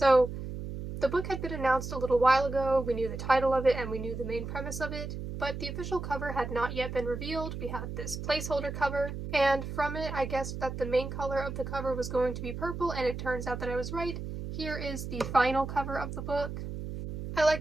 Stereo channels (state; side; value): noise; right; hum, 7 dB below the sound